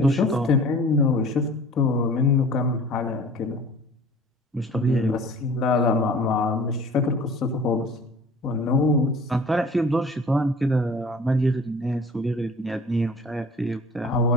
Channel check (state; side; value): normal; both; correlation 0.46